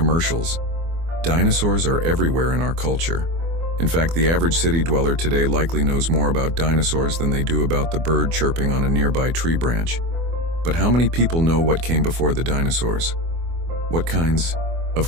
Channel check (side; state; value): left; late; 24 ms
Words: Dinosaurs are everywhere in our culture. In fact, the average city dweller today likely knows more about dinosaurs than they do about the bird chirping on a nearby tree branch. But how many people know what came before the dinosaurs? What kinds